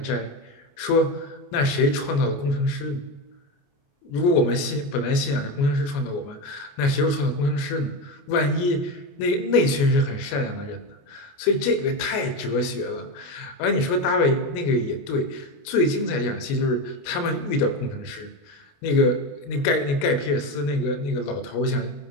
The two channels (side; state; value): right; late; 28 ms